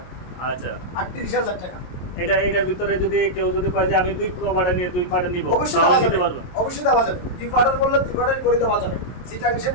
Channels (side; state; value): right; late; 22 ms